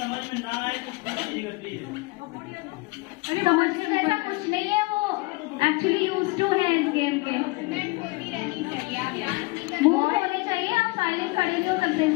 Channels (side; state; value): right; quieter; 23.9 dB